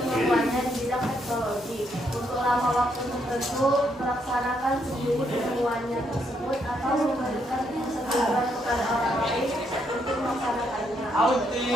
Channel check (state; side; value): normal; both; correlation 0.75